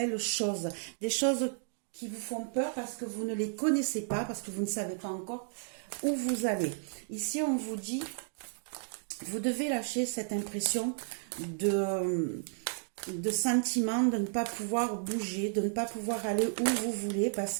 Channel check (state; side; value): silent; left; digital silence